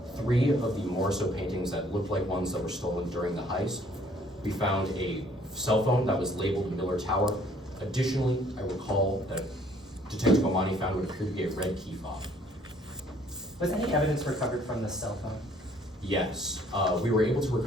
3 of the Morrisseau paintings that looked like ones that were stolen during the heist. We found a cell phone that was labeled Miller Tower. Additionally, I recall that Detective Bomani found what appeared to be a red key fob. Was any evidence recovered from this cell phone? Yes, we were able to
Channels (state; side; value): normal; both; correlation 0.60